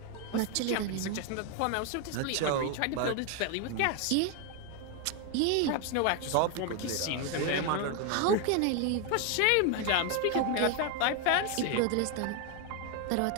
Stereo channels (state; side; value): different; both; correlation 0.01